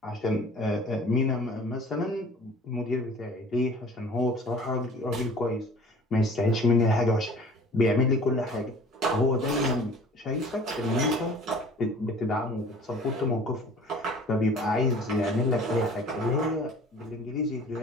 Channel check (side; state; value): both; normal; correlation 0.47